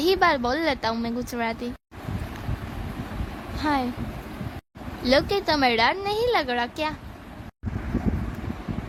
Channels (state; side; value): identical; both; correlation 1.00